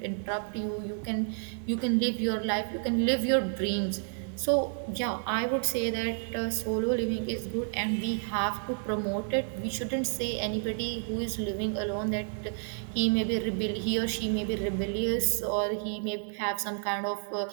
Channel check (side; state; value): left; silent; 58 dB below the other